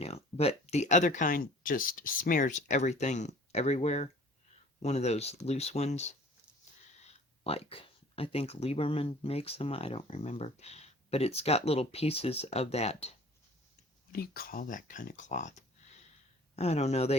But the other kind just smears everything everywhere. One of those loose ones. Like, I think Lieberman makes them. I don't remember. But it's got little pieces of that. What do you call that kind of cloth? I don't know.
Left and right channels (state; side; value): normal; both; correlation 0.48